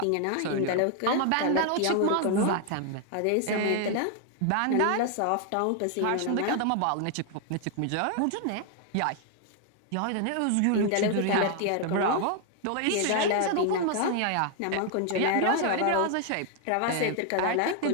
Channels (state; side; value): different; both; correlation 0.00